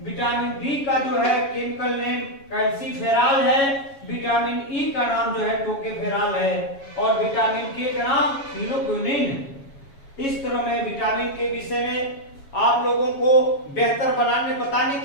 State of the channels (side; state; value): right; late; 7.2 ms